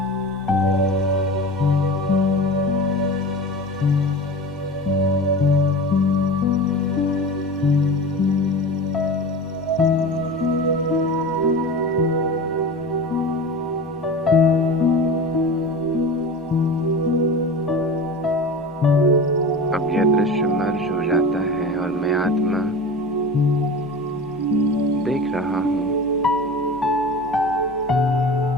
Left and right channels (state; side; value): normal; both; correlation 0.32